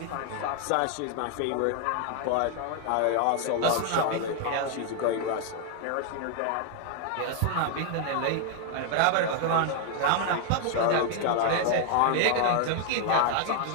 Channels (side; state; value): both; different; correlation 0.00